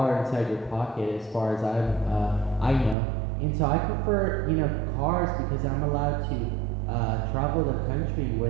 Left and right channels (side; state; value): left; drops out; at 3.0 s